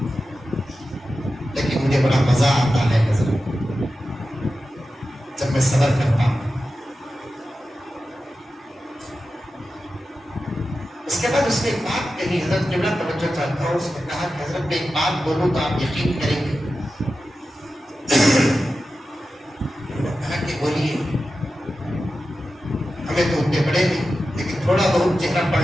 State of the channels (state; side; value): normal; both; correlation 0.92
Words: لیکن مجھے بڑا مزہ آتا ہے حضرت جب میں صبر کرتا ہوں. اس کے بعد اس نے ایک بات کہی، حضرت جملہ توجہ چاہتا ہوں. اس نے کہا کہ حضرت میں ایک بات بولوں تو آپ یقین کریں گے. کہا کہ بولیے. ہمیں تو اتنے بڑے نہیں لیکن تھوڑا بہت چہرہ